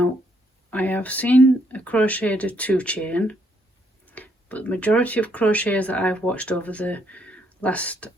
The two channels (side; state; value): both; normal; correlation 0.72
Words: I have seen a crochet do 2 chain, but the majority of crocheters that I've watched over the last